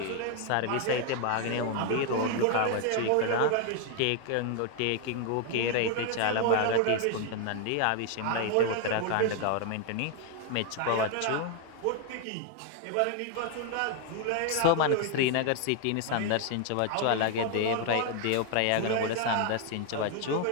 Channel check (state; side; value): different; both; correlation 0.01